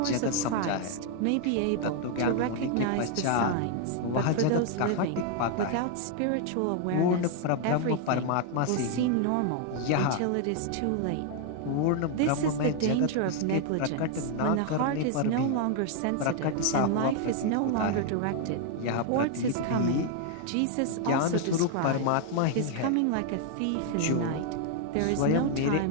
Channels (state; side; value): different; both; correlation 0.00